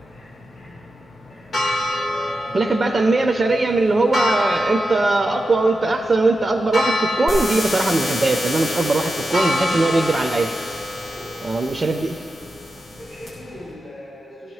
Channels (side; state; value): both; normal; correlation 0.90